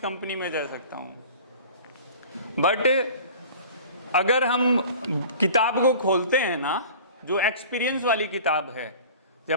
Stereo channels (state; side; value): inverted; both; correlation -0.42